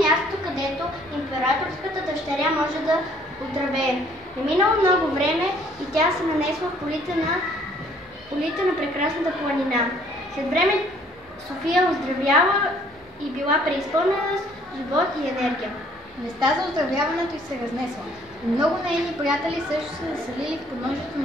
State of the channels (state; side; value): normal; both; correlation 0.61